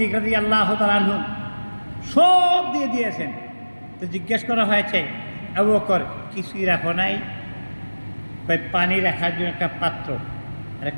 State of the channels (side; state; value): both; inverted; correlation -1.00